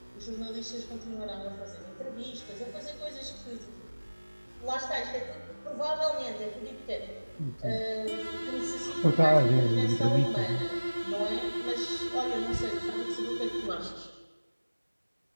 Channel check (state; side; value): inverted; both; correlation -1.00